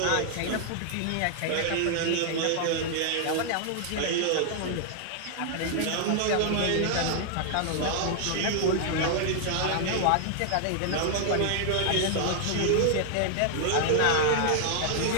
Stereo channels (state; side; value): different; both; correlation 0.00